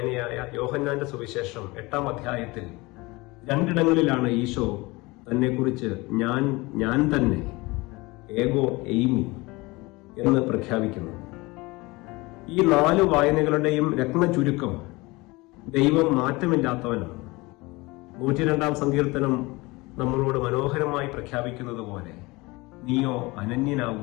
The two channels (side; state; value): right; quieter; 23.1 dB